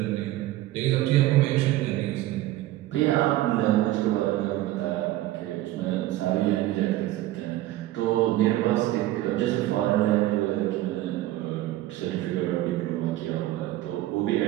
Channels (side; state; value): left; quieter; 15.5 dB